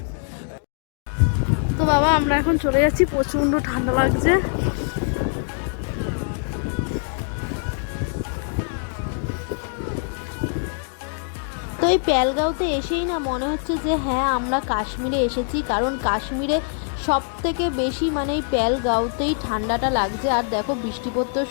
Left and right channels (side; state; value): right; silent; 58 dB below the other